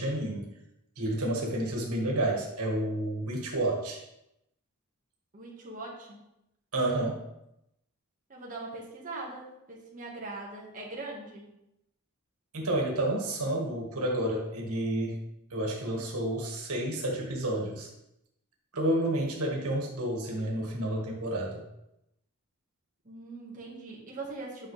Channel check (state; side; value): normal; both; correlation 0.19